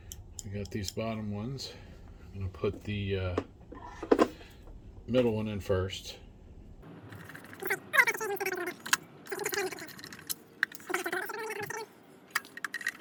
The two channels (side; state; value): both; identical; correlation 1.00